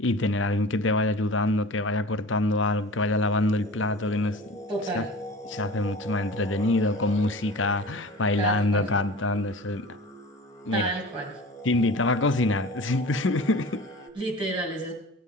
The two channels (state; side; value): normal; both; correlation 0.38